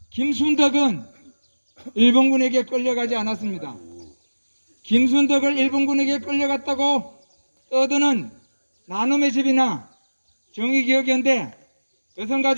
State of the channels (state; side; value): inverted; both; correlation -1.00